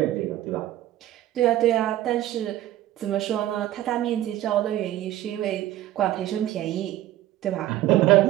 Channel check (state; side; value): quieter; left; 14.0 dB